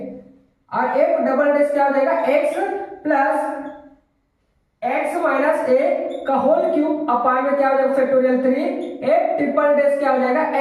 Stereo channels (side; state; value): both; identical; correlation 1.00